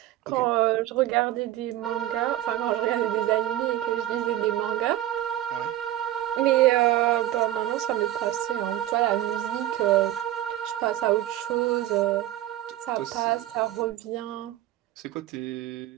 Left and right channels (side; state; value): left; quieter; 13.8 dB